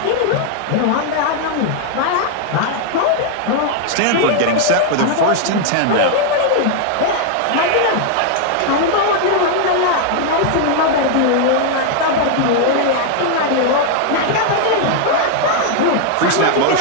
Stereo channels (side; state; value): both; different; correlation 0.00